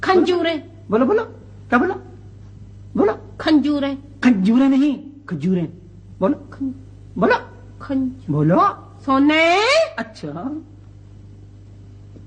खंजूरे। बोलो बोलो, क्या बोलो? बोलो खंजूरें। खंजूरें नहीं, खजूरें। बोलो बोलो बोलो। सोने। अच्छा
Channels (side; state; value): both; identical; correlation 1.00